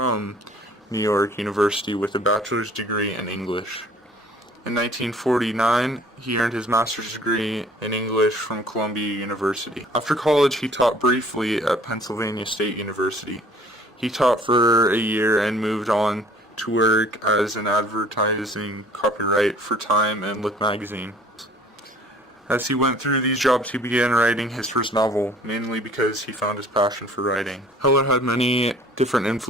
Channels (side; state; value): both; normal; correlation 0.53